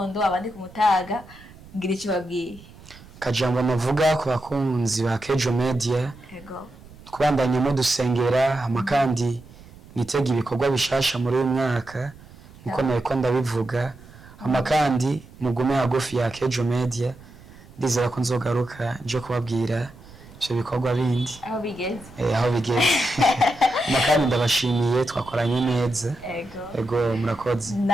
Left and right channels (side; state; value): right; noise; rumble, 21 dB below the sound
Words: abandi ku mutaga, ngira icyo babwiye? Kajambo navuga ku bakunzi ba Akejo Media, kubandanya mu dusengera, amakandi nitega ibikorwa bishasha muri uyu mwaka niko nariko ndabivuga. Amakandi mugume hagufi ya Akejo Media, ndizera ko nzogaruka nje kubabwira ivyo bikorwa bindi aho bigeze. Aho bigeze. Makani ndabashimiye twakoranye neza. Ego murakoze.